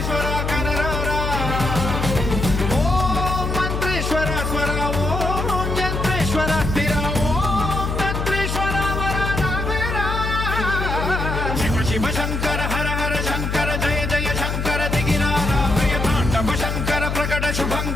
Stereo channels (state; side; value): noise; left; hum, 2 dB below the sound